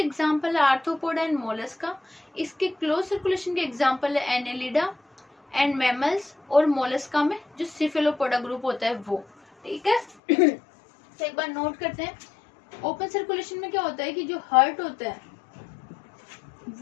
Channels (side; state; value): right; drops out; at 10.2 s